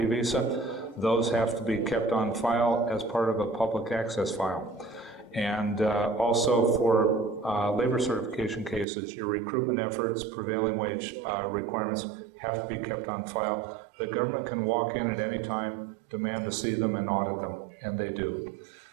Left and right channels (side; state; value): left; drops out; at 8.8 s